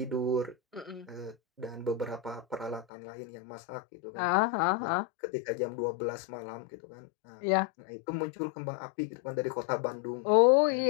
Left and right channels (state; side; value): drops out; right; at 2.9 s